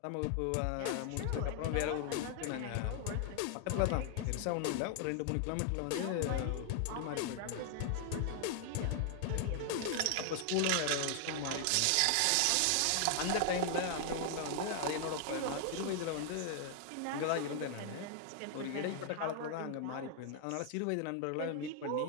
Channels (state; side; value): different; both; correlation 0.00